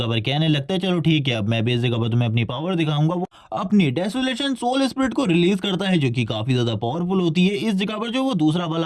पर कहने लगता है चलो ठीक है अब मैं भी इस जगह पर तुम्हें अपनी पावर दिखाऊंगा। वो अपनी डेसोलेशन सोल स्पिरिट को रिलीज करता है जो कि काफी ज्यादा पावरफुल होती है। इस जगह पर जो वो दूसरा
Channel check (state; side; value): identical; both; correlation 1.00